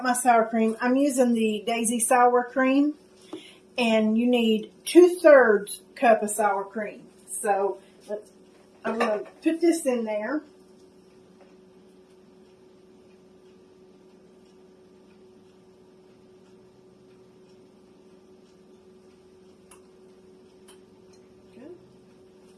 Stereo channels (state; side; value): identical; both; correlation 1.00